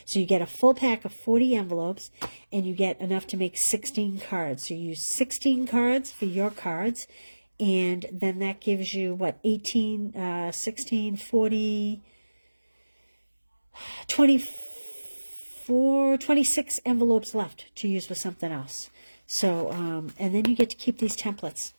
So you get a full pack of 40 envelopes, and you get enough to make 16 cards. So you use 16 cards for your cards, and then that gives you, what, 18, 16, 40... 26 envelopes left to use for something else. So, and then you get to keep these templates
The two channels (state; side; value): inverted; both; correlation -1.00